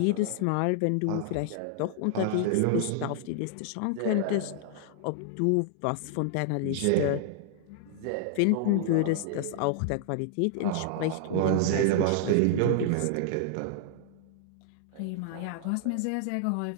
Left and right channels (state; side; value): different; both; correlation -0.01